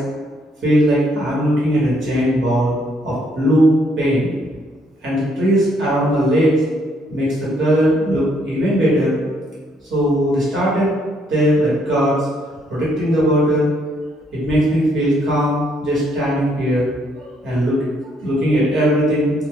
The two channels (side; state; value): both; normal; correlation 0.70